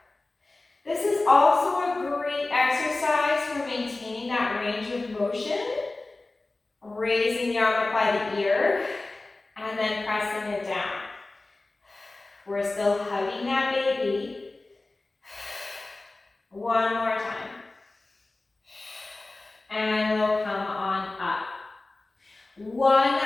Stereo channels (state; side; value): quieter; right; 3.1 dB